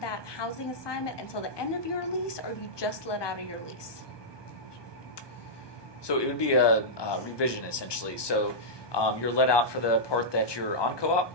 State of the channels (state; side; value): late; right; 1.2 ms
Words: housing assignment until the end of your lease, or you just let out of your lease? So it would be a revision, essentially. So you're let out for the part that you're on co-op,